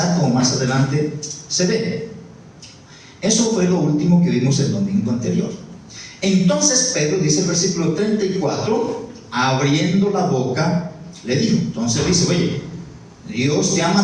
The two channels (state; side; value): identical; both; correlation 1.00